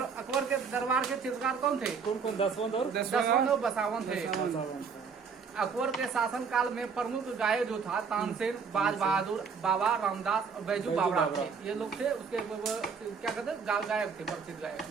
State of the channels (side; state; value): left; quieter; 5.8 dB